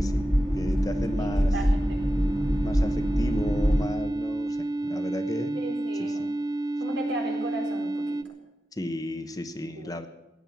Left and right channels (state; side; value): normal; both; correlation 0.92